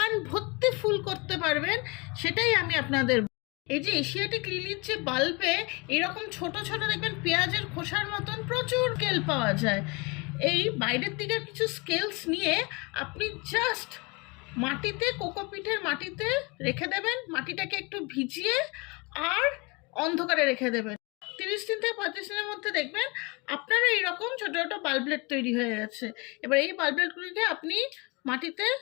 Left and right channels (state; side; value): quieter; right; 28.1 dB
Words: ভর্তি ফুল করতে পারবেন। সেটাই আমি আপনাদের এই যে এশিয়াটিক লিলির যে বাল্বে এরকম ছোট ছোট দেখবেন পেঁয়াজের খোসার মতন প্রচুর স্কেল পাওয়া যায়। এই বাইরের দিকে কিছু স্কেলস নিয়ে আপনি জাস্ট মাটিতে, কোকোপিটের মাটিতে রেখে দেবেন, মাটিটাকে একটু ভিজিয়ে আর অন্ধকারে রেখে দেবেন। 30 দিন থেকে 35 দিনের মধ্যে দেখবেন আপনারা এইরকম ছোটো ছোটো বাল্বলেট তৈরি হয়ে গেছে। এবার এই বাল্বলেটগুলিকে আপনি মাটিতে